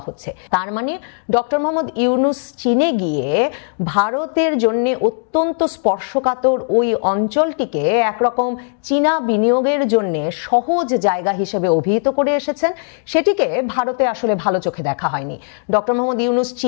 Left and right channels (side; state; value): right; silent; 67 dB below the other